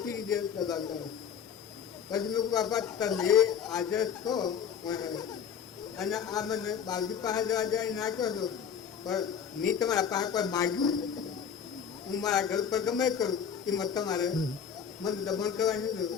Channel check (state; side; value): quieter; right; 7.6 dB